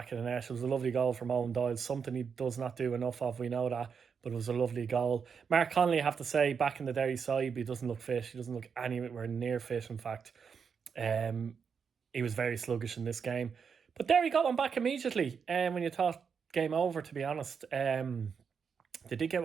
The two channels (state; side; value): quieter; left; 6.3 dB